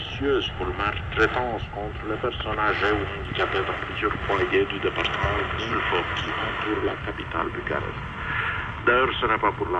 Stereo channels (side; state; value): both; identical; correlation 1.00